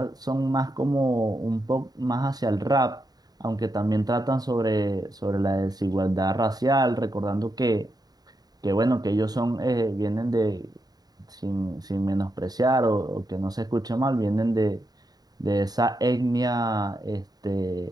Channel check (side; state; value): left; late; 0.19 ms